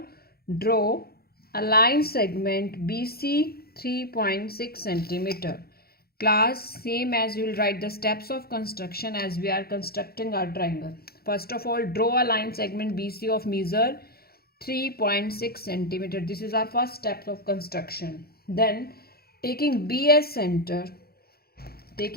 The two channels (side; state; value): right; late; 0.45 ms